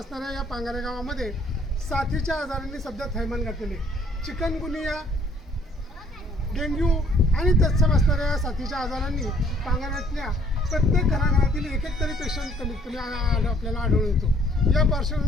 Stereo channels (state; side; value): normal; both; correlation 0.61